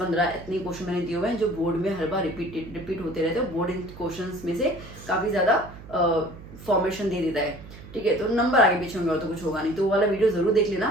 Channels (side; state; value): right; noise; hum, 16 dB below the sound